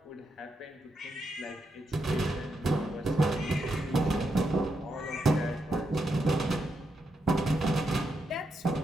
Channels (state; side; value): normal; both; correlation 0.83